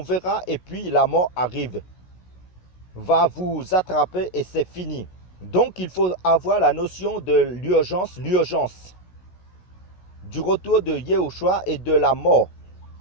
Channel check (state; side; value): late; right; 16 ms